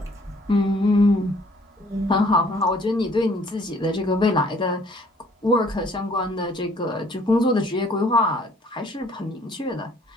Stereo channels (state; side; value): normal; both; correlation 0.59